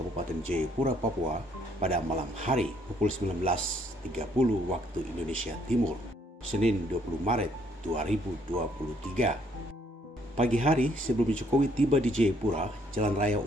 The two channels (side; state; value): both; normal; correlation 0.67